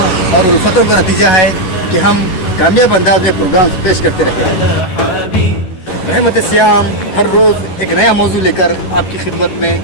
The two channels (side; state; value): right; late; 11 ms